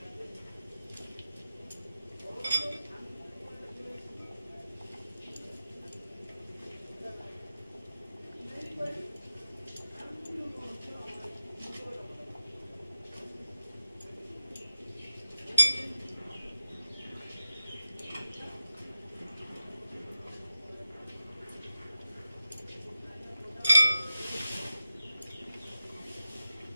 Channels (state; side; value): inverted; both; correlation -0.90